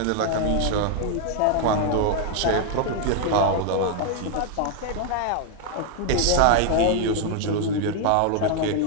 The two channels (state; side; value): different; both; correlation 0.00